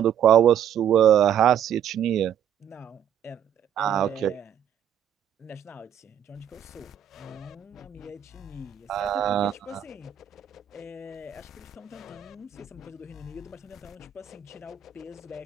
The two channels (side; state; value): left; quieter; 9.5 dB